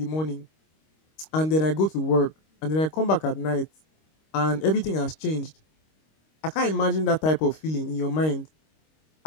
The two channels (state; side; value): late; right; 26 ms